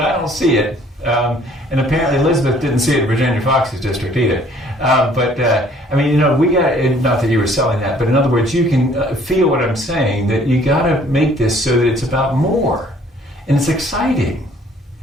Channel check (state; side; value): normal; both; correlation 0.58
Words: don't see it. And apparently Elizabeth didn't see it in Virginia Fox's district either. We got, not that you were selling that, but in other words, you can feel what I'm saying, that you got to make this so that it's about more. And it's exciting.